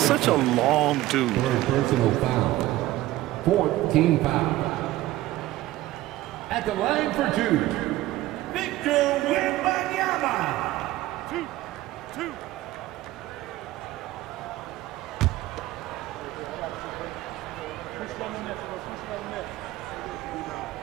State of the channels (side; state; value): left; quieter; 16.3 dB